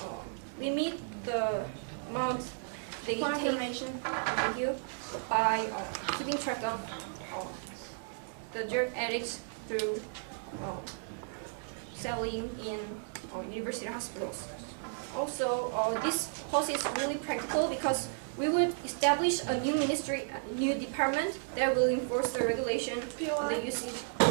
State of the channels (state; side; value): silent; left; digital silence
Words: limit the amount they take by keeping track of the drug addicts through selling in university hospitals. Also, this policy is really practical because we would establish a new ministry, a new department that will enforce the regulation on the usage